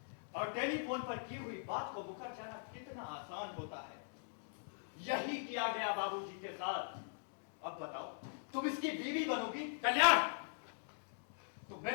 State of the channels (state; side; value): silent; right; digital silence